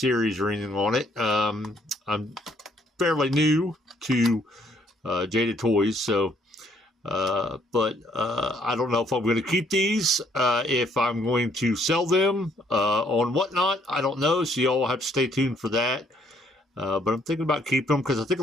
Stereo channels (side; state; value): both; normal; correlation 0.67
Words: or anything on it. I'm fairly new to Jada Toys, so... But I don't know if I'm going to keep these, if I'm going to sell them on Whatnot. I don't know, so y'all have to stay tuned for that. But I'm thinking about keeping them because I think